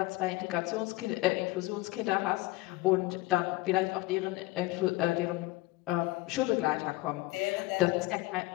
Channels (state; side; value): quieter; right; 20.2 dB